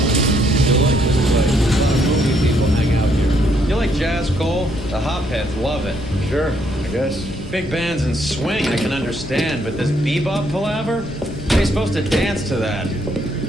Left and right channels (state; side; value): normal; both; correlation 0.71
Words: The hopheads love it. Sure, I guess. Big bands and swing I can understand, but this bebop palaver? They're supposed to dance to that.